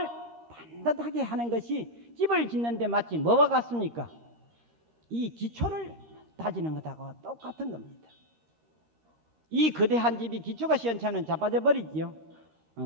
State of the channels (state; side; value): late; left; 13 ms